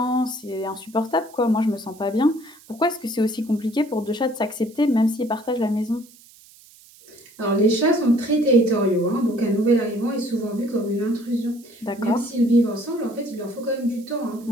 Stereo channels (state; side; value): noise; right; hiss, 25 dB below the sound